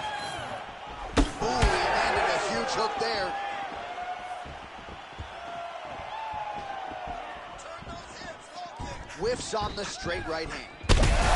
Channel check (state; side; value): identical; both; correlation 1.00